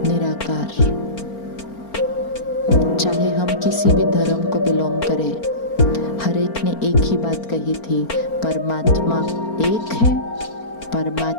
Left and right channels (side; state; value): right; late; 4.4 ms